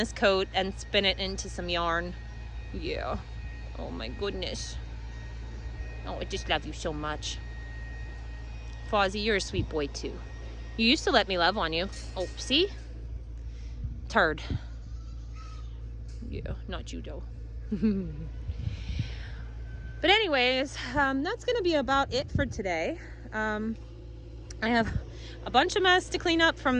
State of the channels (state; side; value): identical; both; correlation 1.00